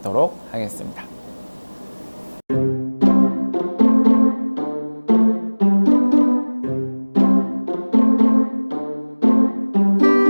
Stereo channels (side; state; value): both; inverted; correlation -1.00